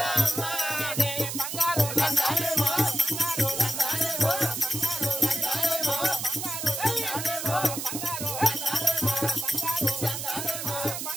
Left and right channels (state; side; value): noise; right; hiss, 5 dB below the sound